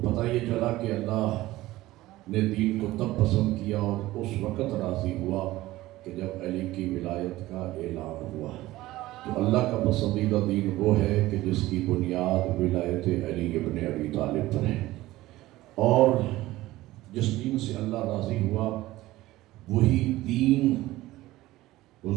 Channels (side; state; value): left; quieter; 17.1 dB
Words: یہ چلا کہ اللہ نے دین کو تب پسند کیا اور اس وقت راضی ہوا کہ جب علی کی ولایت کا اعلان ہوا. تو اللہ کا پسندیدہ دین وہ ہے کہ جس کی بنیاد ولایت علی ابن ابی طالب پر ہے، اور جس دین سے اللہ راضی ہوا وہی دین